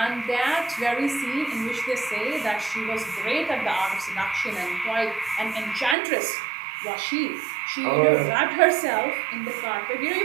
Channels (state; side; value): drops out; left; at 6.0 s